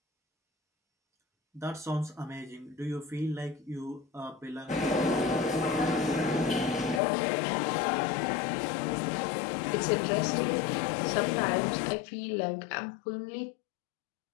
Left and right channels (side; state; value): right; drops out; at 7.0 s